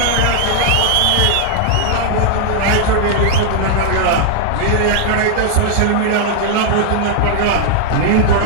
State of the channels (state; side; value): different; both; correlation -0.01